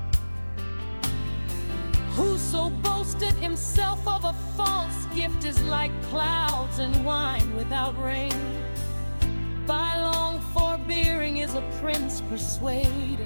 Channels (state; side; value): inverted; both; correlation -1.00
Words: Whoso boasteth himself of a false gift is like clouds and wine without rain. By long forbearing is a prince